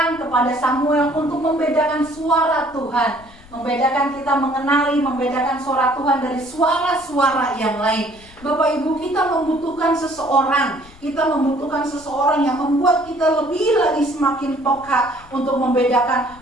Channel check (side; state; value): left; noise; rumble, 24 dB below the sound